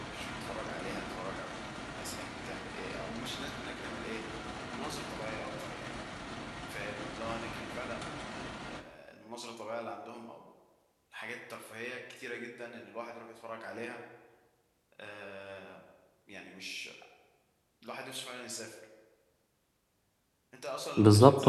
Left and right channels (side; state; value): both; identical; correlation 1.00